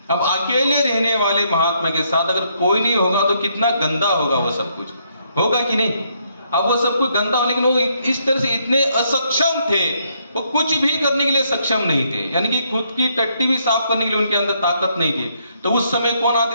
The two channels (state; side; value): inverted; both; correlation -0.72